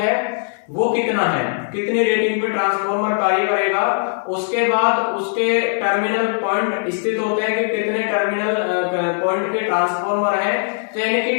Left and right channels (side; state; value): right; silent; digital silence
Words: वो कितना है, कितनी रेटिंग पे ट्रांसफॉर्मर कार्य करेगा। उसके बाद उसके टर्मिनल पॉइंट स्थित होते हैं कि कितने टर्मिनल पॉइंट के ट्रांसफॉर्मर है। तो यानी कि